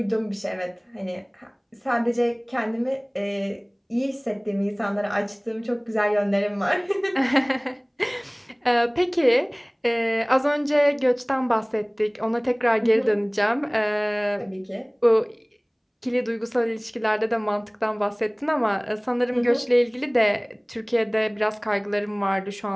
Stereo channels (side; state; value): both; identical; correlation 1.00